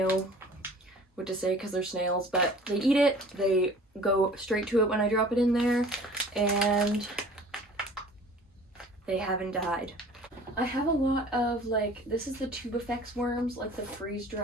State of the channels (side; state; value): both; normal; correlation 0.47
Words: what to say because they're snails, but they eat it, they go straight to it when I drop it in there, and they haven't died. I have a lot of like, this is the Tubifex worms, like the